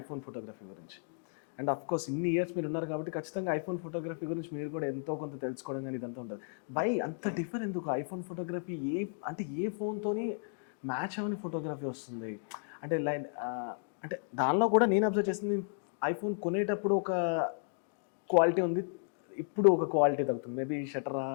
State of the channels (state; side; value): silent; right; digital silence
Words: ఫోటోగ్రఫీ గురించి. అండ్ ఆఫ్‌కోర్స్ ఇన్ని ఇయర్స్ మీరున్నారు కాబట్టి ఖచ్చితంగా ఐఫోన్ ఫోటోగ్రఫీ గురించి మీరు కూడా ఎంతో కొంత తెలుసుకోవడం గాని ఇదంతా ఉంటది. వై అంత డిఫర్ ఎందుకు? ఐఫోన్ ఫోటోగ్రఫీ ఏ ఫోన్‌తోని మ్యాచ్ అవ్వని ఫోటోగ్రఫీ వస్తుంది? అంటే అంటే దానిలో కూడా నేను అబ్జర్వ్ చేసింది ఐఫోన్ కొనేటప్పుడు ఒక క్వాలిటీ ఉంది. ఇప్పుడు ఒక క్వాలిటీ తగ్గుతుంది. మేబీ షట్టరా,